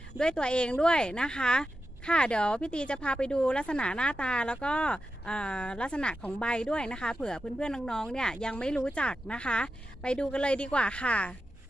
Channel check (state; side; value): normal; both; correlation 0.90